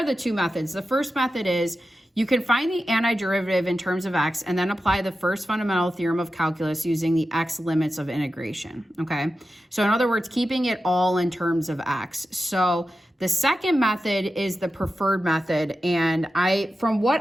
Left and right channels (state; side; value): normal; both; correlation 0.92